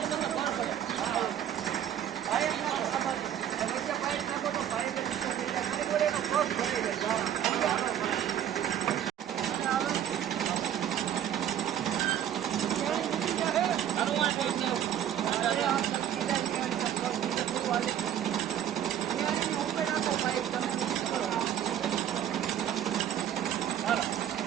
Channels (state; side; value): quieter; left; 10.2 dB